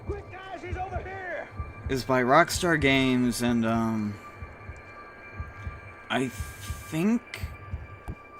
Quick, guys, he's over here. It's by Rockstar Games, and I think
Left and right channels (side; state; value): both; identical; correlation 1.00